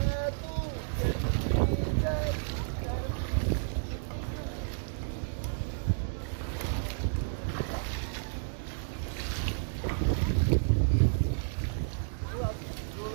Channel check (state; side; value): silent; left; 57 dB below the other